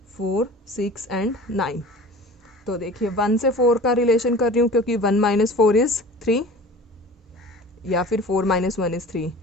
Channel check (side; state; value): both; normal; correlation 0.41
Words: 4 6 एंड 9. तो देखिए 1 से 4 का रिलेशन कर रही हूँ क्योंकि 1 माइनस 4 इज़ 3, या फिर 4 माइनस 1 इज़ 3,